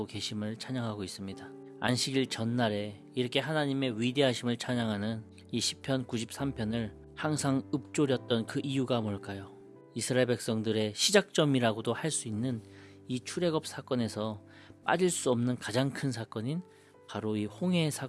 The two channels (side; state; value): both; identical; correlation 1.00